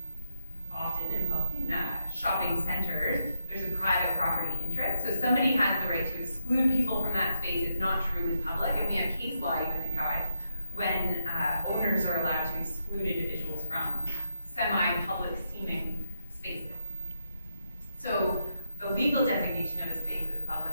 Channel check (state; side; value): inverted; both; correlation -0.81